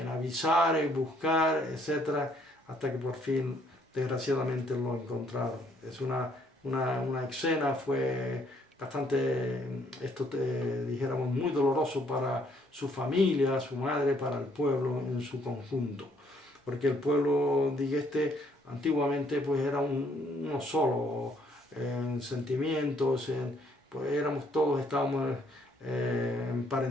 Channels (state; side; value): normal; both; correlation 0.66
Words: avisar, en buscar, etcétera, hasta que por fin, desgraciadamente, lo encontraron. Es una escena, fue bastante, dijéramos, muy doloroso para su familia, su madre, para el pueblo en su conjunto. Porque el pueblo, antiguamente, pues era uno solo, en sentimientos, pues estábamos